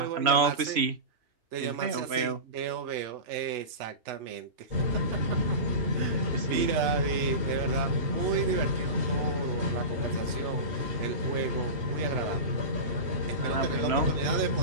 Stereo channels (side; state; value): left; late; 3.0 ms